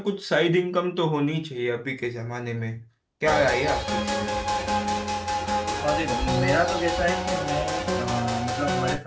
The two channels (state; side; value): identical; both; correlation 1.00